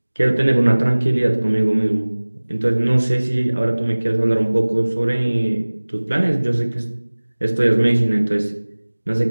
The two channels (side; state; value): both; inverted; correlation -1.00